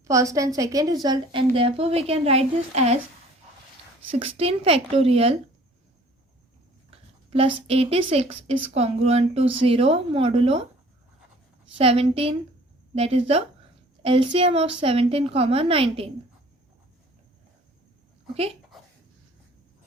first and second result, and therefore we can write this as 16 factorial plus 86 is congruent to 0 modulo 17, that is the LCM of 17, 19. Okay,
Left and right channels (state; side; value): normal; both; correlation 0.52